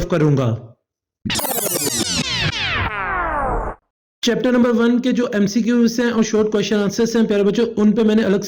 करूंगा। चैप्टर नंबर 1 के जो एमसीक्यूज हैं और शॉर्ट क्वेश्चन आंसर्स हैं प्यारे बच्चों, उन पे मैंने अलग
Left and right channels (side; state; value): both; identical; correlation 1.00